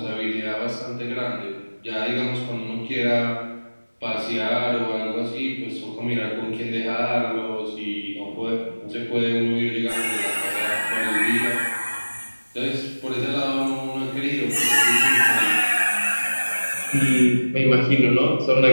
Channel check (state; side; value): inverted; both; correlation -1.00